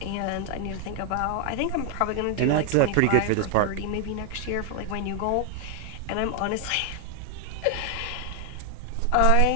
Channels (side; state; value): both; different; correlation 0.00